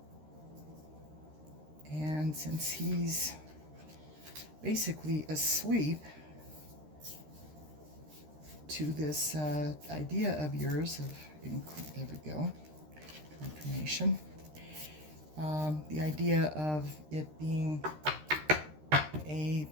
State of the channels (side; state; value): left; late; 13 ms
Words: And since he's basically asleep to this idea of yours of, there we go, confirmation. The idea of it being a